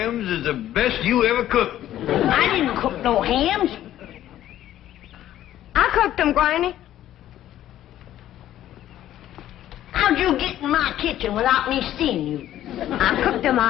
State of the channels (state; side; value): quieter; right; 12.6 dB